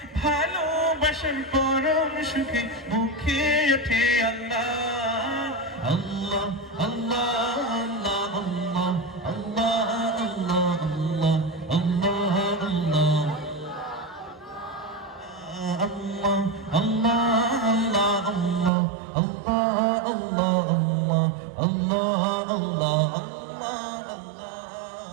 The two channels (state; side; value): drops out; left; at 18.7 s